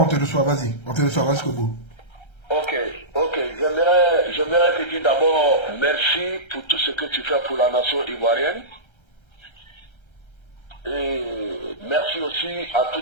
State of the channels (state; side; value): late; right; 1.3 ms